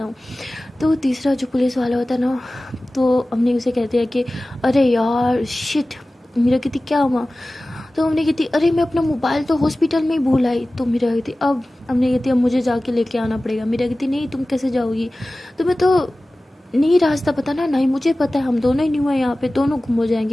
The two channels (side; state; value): both; normal; correlation 0.97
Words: हूँ। तो तीसरा जो पुलिस वाला होता है ना, तो हमने उसे कहते हैं कि अरे यार शिट। मेरा कहती क्या हुआ। तो हमने कहती अरे मैं अपना मोबाइल तो हॉस्पिटल में ही भूल आई। तो मेरा कहती अब हमने कहती अब मुझे जाके लेके आना पड़ेगा। मेरा कहती नहीं तुम कैसे जाओगी, तुम्हें तो नहीं रास्ता पता ना, नहीं मुझे पता है, हम दोनों ही न्यू है यहाँ पे, दोनों गुम हो